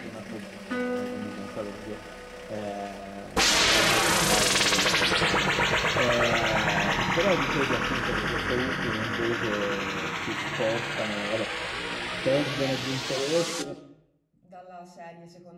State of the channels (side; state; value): both; identical; correlation 1.00